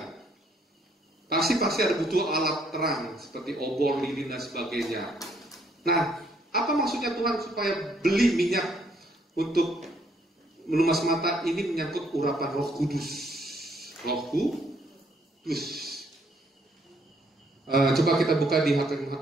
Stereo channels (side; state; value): both; normal; correlation 0.68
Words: Pasti ada butuh alat terang seperti obor, lilin dan sebagainya. Nah, apa maksudnya Tuhan supaya beli minyak untuk melumas mata? Ini menyangkut urapan Roh Kudus. Roh Kudus. Coba kita buka di